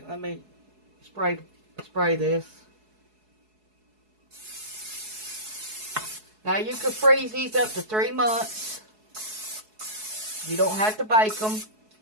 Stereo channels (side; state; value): left; late; 4.7 ms